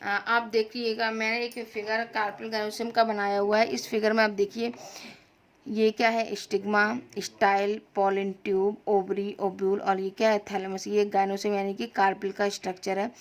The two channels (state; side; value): identical; both; correlation 1.00